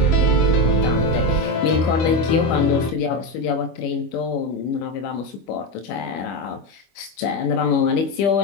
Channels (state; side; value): late; right; 25 ms